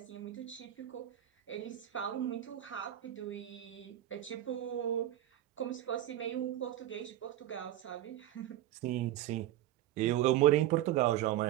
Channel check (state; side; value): quieter; left; 13.2 dB